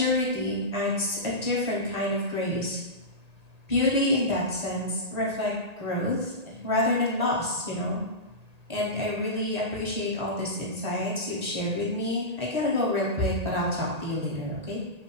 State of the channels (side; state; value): left; late; 1.8 ms